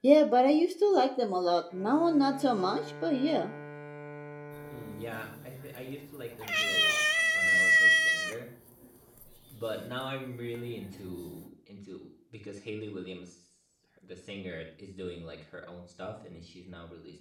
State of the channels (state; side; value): identical; both; correlation 1.00